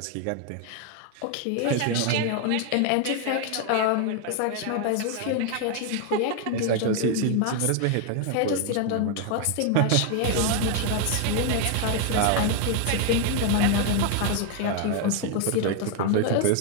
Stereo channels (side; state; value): both; different; correlation 0.01